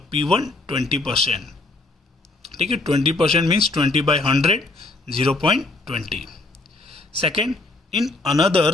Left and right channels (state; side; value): quieter; right; 3.2 dB